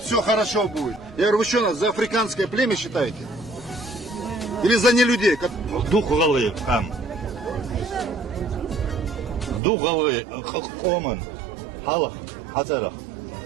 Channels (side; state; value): left; drops out; at 9.6 s